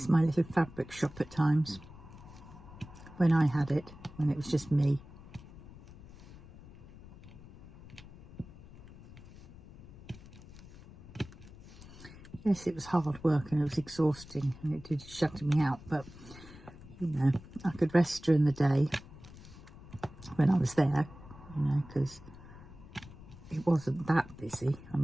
my little fabric shop at times, when I had it, when it was just me. Yes, it was hard work and it was exhausting and it did shut me out, but you know, I could rest during the day when I was there, you know, because it wasn't that busy. I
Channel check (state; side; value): noise; left; rumble, 18 dB below the sound